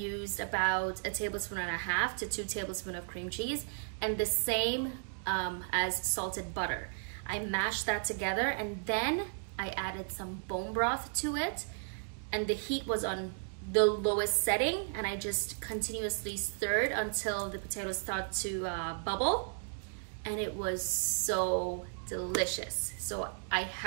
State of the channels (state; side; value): silent; left; digital silence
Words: about 1.5 tablespoons to 2 tablespoons of cream cheese, and the same as salted butter. I mashed that together, and then I added some bone broth to it, and the heat was on the lowest setting, and I just continuously stirred until the potatoes start to bubble, and it was so delicious. So I